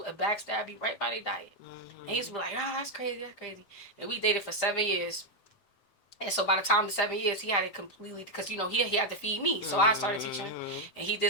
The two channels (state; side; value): late; right; 7.7 ms